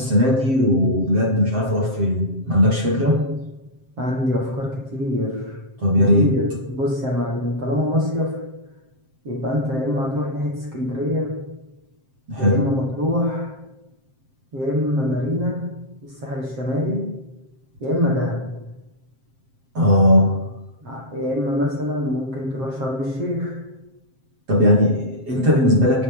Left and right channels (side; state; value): left; late; 7.6 ms